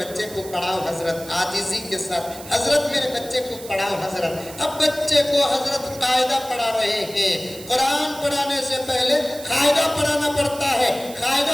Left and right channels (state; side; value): noise; right; hiss, 15 dB below the sound